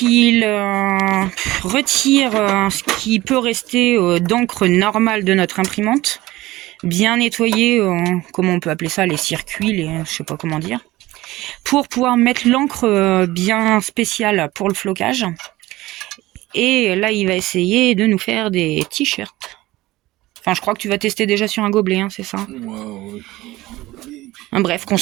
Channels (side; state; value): left; quieter; 18.0 dB